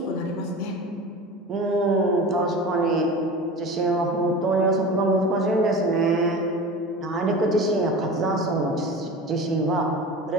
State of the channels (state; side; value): normal; both; correlation 0.33